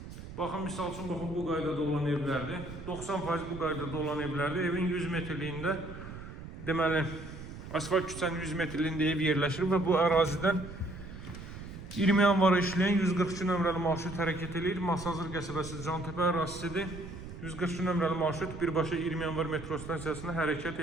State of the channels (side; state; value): right; noise; rumble, 12 dB below the sound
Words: Baxın, misal üçün, baxın, bu qaydada olan evlərdir. 90% bu qaydada olan evlərdir. Evin 100 metrliyində, deməli, asfalt küçənin 100 metrliyində ev yerləşir və bu ərazidən 20 yanvara işləyən 142 nömrəli marşrut hərəkət edir. Masazır qəsəbəsi Cantepe ərazisidir. 142 nömrəli marşrut birbaşa 20 yanvar metro stansiyasına hərəkət